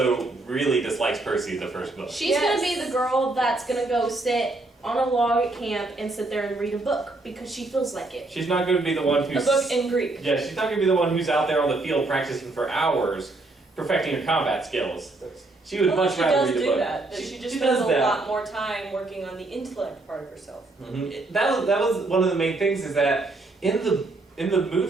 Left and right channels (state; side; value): quieter; left; 3.1 dB